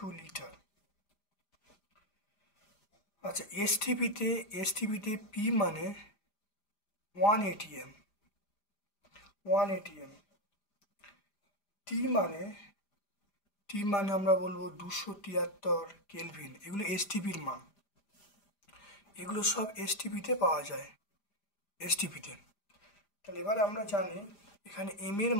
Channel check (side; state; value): right; late; 5.0 ms